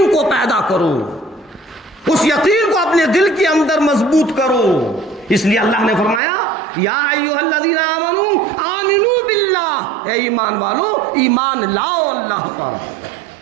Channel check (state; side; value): drops out; left; at 6.2 s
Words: کو پیدا کرو، اس یقین کو اپنے دل کے اندر مضبوط کرو۔ اس لیے اللہ نے فرمایا یا ایھا الذین آمنوا آمنوا باللہ، اے ایمان والو ایمان لاؤ اللہ پر۔